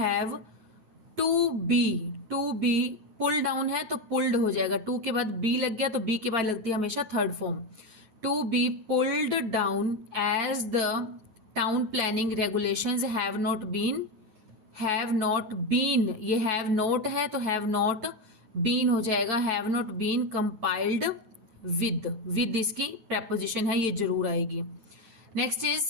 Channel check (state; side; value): late; left; 9.3 ms